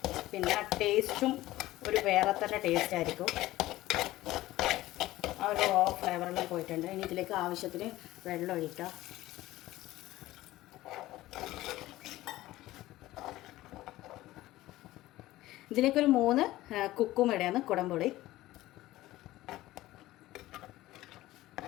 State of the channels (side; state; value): right; quieter; 16.6 dB